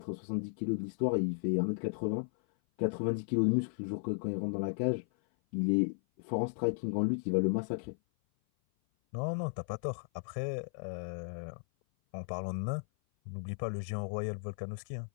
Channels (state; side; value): silent; right; 54 dB below the other